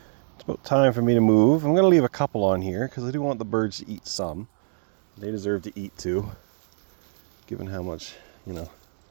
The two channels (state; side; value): silent; left; digital silence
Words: It's about time for me to move. I'm going to leave a couple on here because I do want the birds to eat some. They deserve to eat too, given how much, you know,